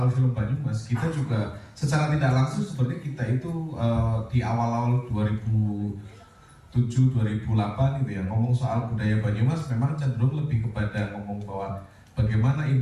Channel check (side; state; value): both; identical; correlation 1.00